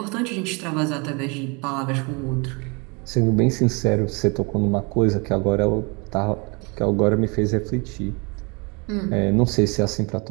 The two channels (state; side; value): quieter; left; 30.4 dB